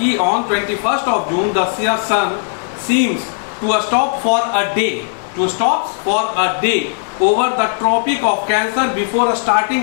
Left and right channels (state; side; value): silent; right; digital silence